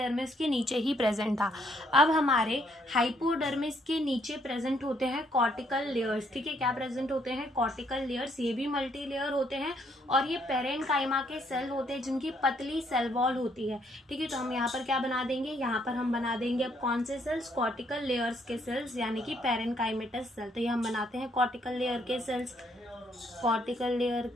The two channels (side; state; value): both; normal; correlation 0.70